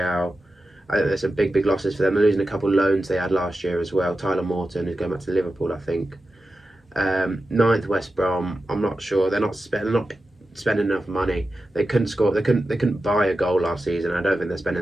I think there's some big losses for them. They're losing a couple of loans they had last year as well. Tyler Morton is going back to Liverpool, I think. 9th West Brom. I'm not sure. They're not spending enough money. They couldn't score. They couldn't buy a goal last season. I don't think they're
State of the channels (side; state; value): both; normal; correlation 0.92